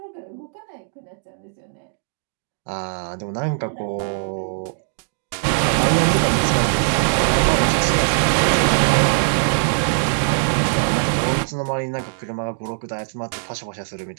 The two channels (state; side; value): silent; left; digital silence